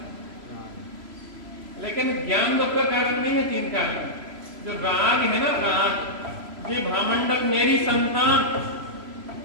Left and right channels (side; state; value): left; late; 3.0 ms